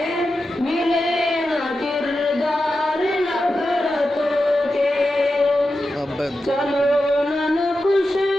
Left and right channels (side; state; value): both; normal; correlation 0.91